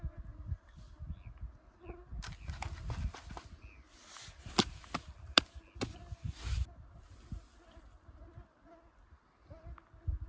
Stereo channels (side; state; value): both; identical; correlation 1.00